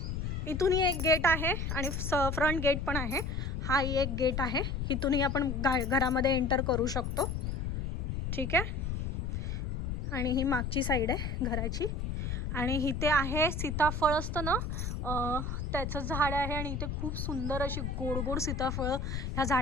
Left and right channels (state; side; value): noise; left; rumble, 2 dB below the sound